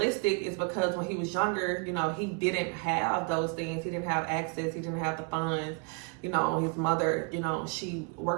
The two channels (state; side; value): quieter; left; 34.5 dB